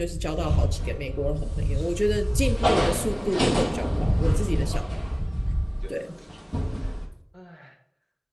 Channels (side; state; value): both; identical; correlation 1.00